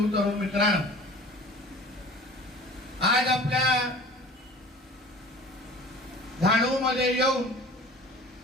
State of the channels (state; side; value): normal; both; correlation 0.43